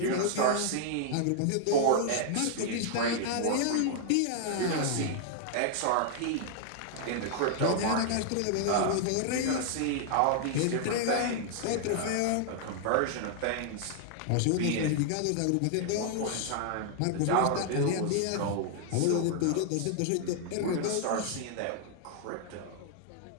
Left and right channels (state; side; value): different; both; correlation 0.00